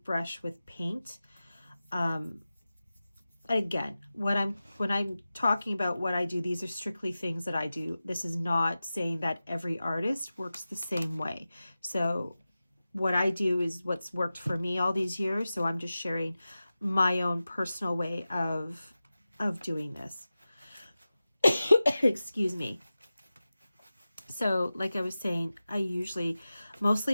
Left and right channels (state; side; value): inverted; both; correlation -0.95